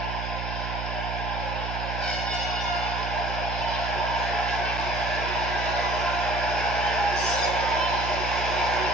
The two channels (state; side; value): noise; right; hum, 5 dB below the sound